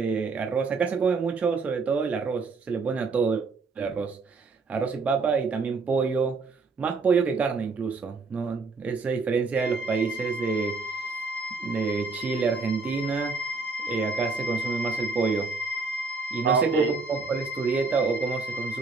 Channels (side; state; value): left; quieter; 4.2 dB